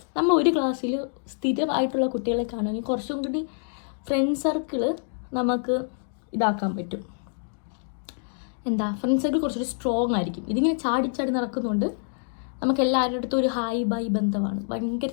നമ്മൾ ഒരു ക്ലാസ്സിൽ സ്ഥിരമായിട്ടുള്ള കുട്ടികളെ കാണുമെങ്കിൽ കുറച്ചും കൂടി ഫ്രണ്ട് സർക്കിൾ നമുക്ക് ഇതാക്കാൻ പറ്റും. ഫ്രണ്ട് സർക്കിൾ കുറച്ചുകൂടി സ്ട്രോങ് ആയിരിക്കും. ഇതിങ്ങനെ ചാടി നടക്കുന്നുണ്ട്. നമുക്ക് എല്ലാവരുടെ അടുത്തും ഒരു ഹായ് ബൈ ബന്ധമാണ്. ഭയങ്കര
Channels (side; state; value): right; silent; digital silence